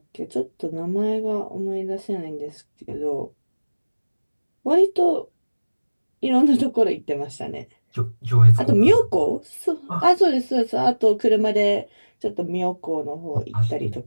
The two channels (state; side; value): inverted; both; correlation -1.00